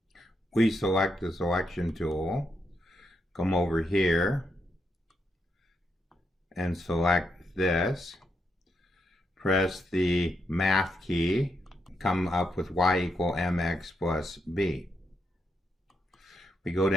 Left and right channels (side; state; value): both; normal; correlation 0.81